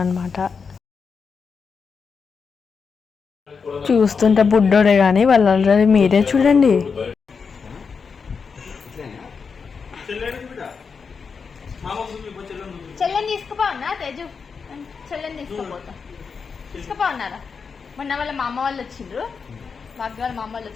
అనమాట. చూస్తుంటే బుడ్డోడే కానీ వాళ్ళందరూ మీరే చూడండి. చెల్లెని తీసుకుపోన్నా తేజు, చెల్లెని తీసుకుపోన్నారా? మొన్న వాళ్ళ మా అమ్మ వాళ్ళు వచ్చిండ్రు, భాగ్య వాళ్ళ మా అమ్మ వాళ్ళు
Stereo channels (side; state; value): right; quieter; 5.5 dB